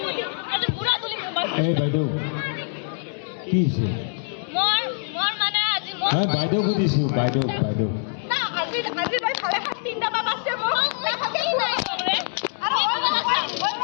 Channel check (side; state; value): right; silent; 62 dB below the other